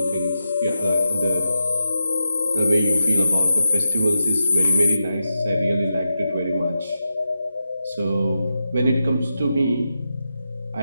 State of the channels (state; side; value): inverted; both; correlation -0.89